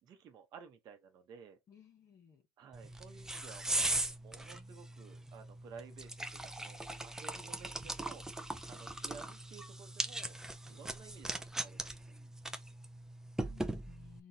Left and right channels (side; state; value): both; normal; correlation 0.48